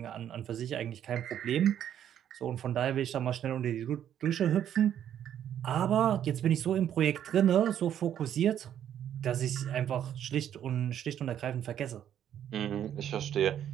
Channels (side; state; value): left; quieter; 10.1 dB